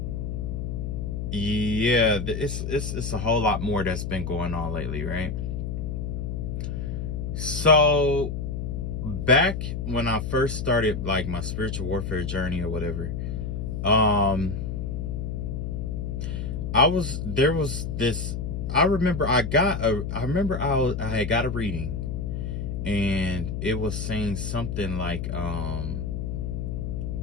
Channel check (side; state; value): left; noise; hum, 3 dB below the sound